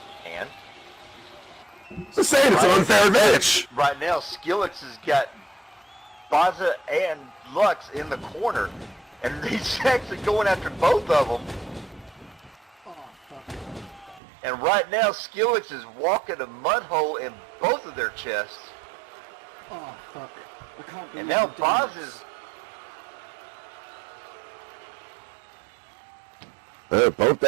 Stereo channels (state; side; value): drops out; left; at 14.2 s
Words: And Just saying, it's an unfair advantage. right now, Skillex has got Bazza and Lux in the corner, and he's actually going after both of them. And right now, Skillex is walking a mud hole in both of their chests. Oh, fuck. I can't believe And now I'm doing Baz this. is... Both